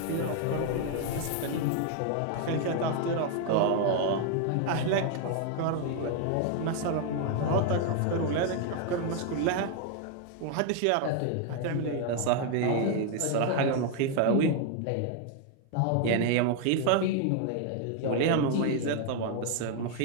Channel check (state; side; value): different; both; correlation 0.00